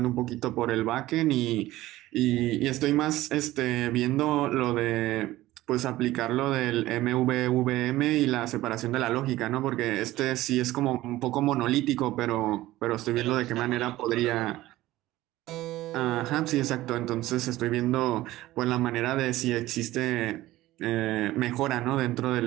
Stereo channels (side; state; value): left; quieter; 16.5 dB